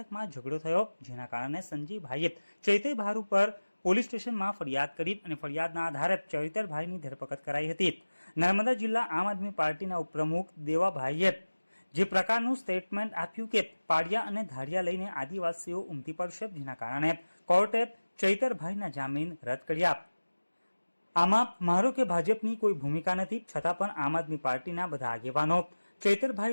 ઝઘડો થયો, જેના કારણે સંજયભાઈએ ચૈતરભાઈ ઉપર પોલીસ સ્ટેશનમાં ફરિયાદ કરી અને ફરિયાદના આધારે ચૈતરભાઈની ધરપકડ કરાઈ હતી। નર્મદા જિલ્લા આમ આદમી પાર્ટીના ઉપપ્રમુખ દેવાભાઈએ જે પ્રકારનું સ્ટેટમેન્ટ આપ્યું કે પાડિયા અને ધાડિયા લઈને આદિવાસીઓ ઉમટી પડશે, જેના કારણે કોર્ટે ચૈતરભાઈના જામીન રદ કર્યા। આમાં મારો કે ભાજપની કોઈ ભૂમિકા નથી, છતાં પણ આમ આદમી પાર્ટીના બધા આગેવાનો,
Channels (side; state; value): both; inverted; correlation -1.00